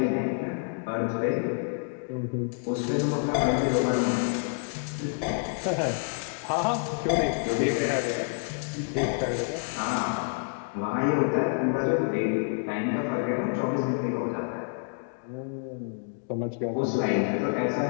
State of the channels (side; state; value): right; silent; 59 dB below the other